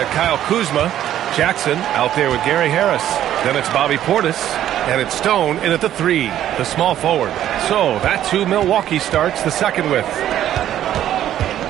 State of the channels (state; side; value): quieter; left; 11.7 dB